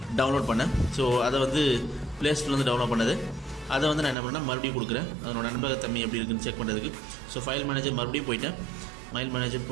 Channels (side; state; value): left; drops out; at 4.2 s